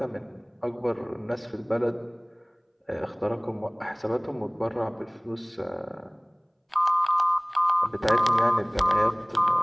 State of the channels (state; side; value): identical; both; correlation 1.00